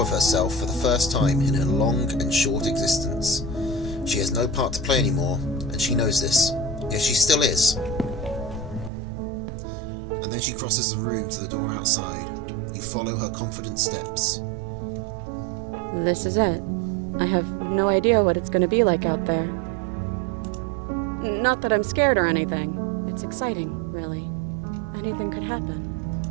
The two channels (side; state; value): left; drops out; at 8.9 s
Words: of herself for the first time in her long and short existence. She has no part to play anymore, and she knows this. Yet she still is. And then she crosses the room to the door outside. You follow her confident steps. This is it. I have no idea what it's going to be like out there. Not that I'm scared or anything. It's exciting, really. Anything could happen.